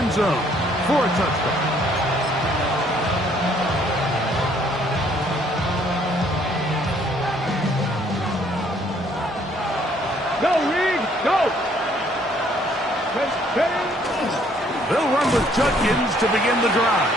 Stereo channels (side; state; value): both; normal; correlation 0.64